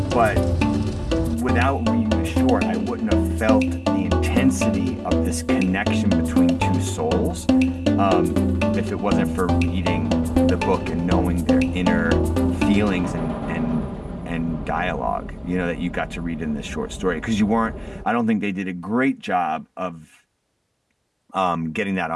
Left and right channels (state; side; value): identical; both; correlation 1.00